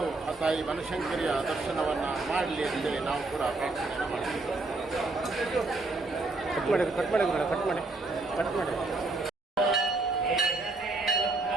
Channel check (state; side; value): quieter; left; 3.3 dB